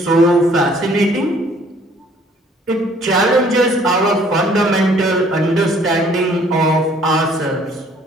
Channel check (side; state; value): both; normal; correlation 0.59